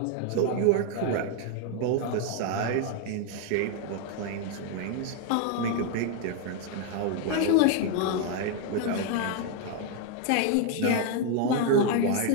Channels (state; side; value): different; both; correlation 0.01